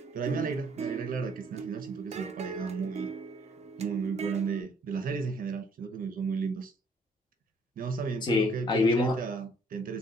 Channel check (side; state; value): both; normal; correlation 0.63